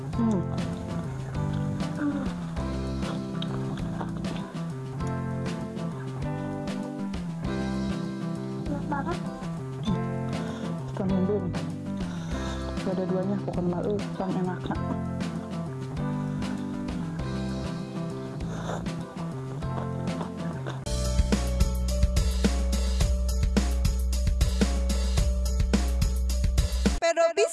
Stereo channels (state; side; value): identical; both; correlation 1.00